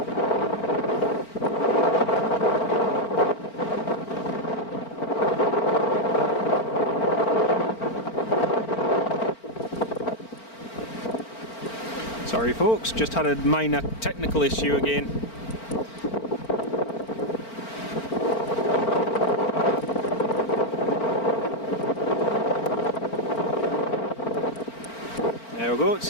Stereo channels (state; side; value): late; right; 4.4 ms